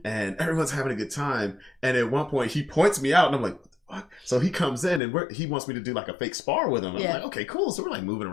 and everyone's having a good time. And at one point, he points me out, and I'm like, "What?" So he comes in, and he wants me to do like a fake spar with him. I'm like, "Okay, cool." So we're like moving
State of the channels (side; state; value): right; drops out; at 5.0 s